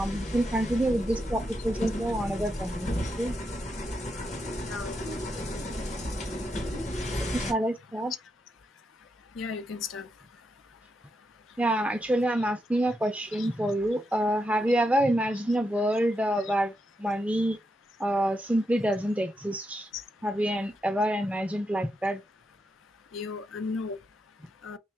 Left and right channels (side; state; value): both; normal; correlation 0.83